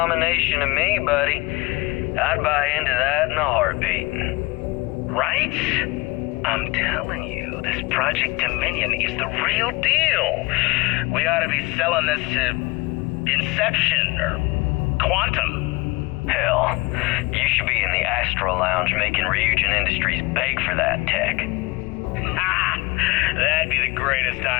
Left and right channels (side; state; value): right; quieter; 23.5 dB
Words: to me, buddy. I'd buy into that in a heartbeat. Right? I'm telling you, this Project Dominion is the real deal. We ought to be selling this to Inception or Quantum. Hell, you should be in the Astro Lounge making Ryujin Industries beg for that tech. Ha! That'd be the greatest